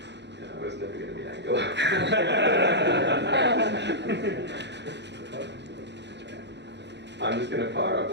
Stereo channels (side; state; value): left; late; 0.51 ms